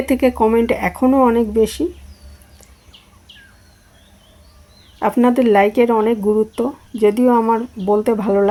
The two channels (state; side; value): identical; both; correlation 1.00